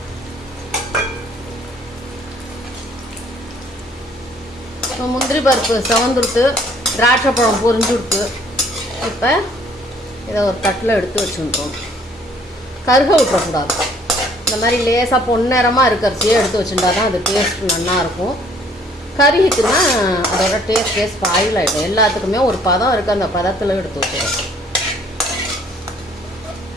முந்திரி பருப்பு செவந்துடுத்து, திராட்சை பழம் பொரிஞ்சுடுத்து. இப்போ இதை ஒரு தட்டில் எடுத்து வச்சுருக்கோம். கருக விட்டுறக்கூடாது. இந்த மாதிரி லேசாக பொன்னிறமாக இருக்கிறச்சியே எடுத்து வச்சுட்டா தான் அது டேஸ்ட் நல்லாயிருக்கும். கருகிட்டுன்னா அதோட டேஸ்ட் ஸ்பாயில் ஆகிடும். எல்லாத்துக்குமே ஒரு பதம் இருக்குது, அந்த பதத்தில் எடுத்து வச்சுருவோம்.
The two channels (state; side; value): normal; both; correlation 0.59